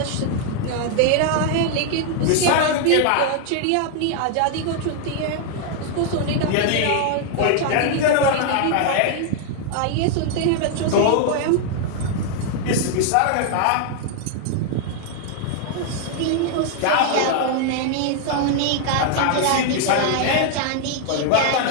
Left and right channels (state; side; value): different; both; correlation 0.00